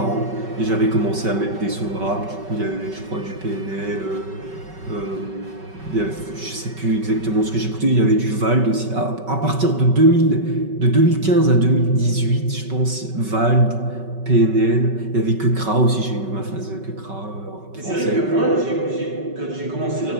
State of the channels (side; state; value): left; late; 5.3 ms